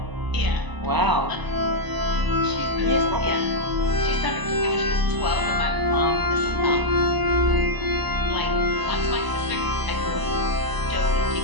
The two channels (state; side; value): late; left; 1.0 ms